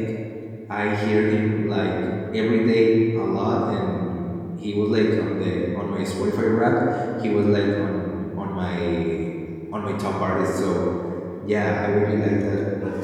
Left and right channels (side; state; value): both; identical; correlation 1.00